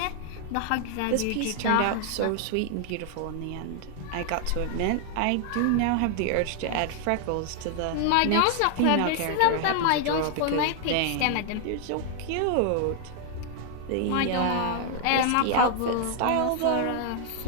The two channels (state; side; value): different; both; correlation 0.00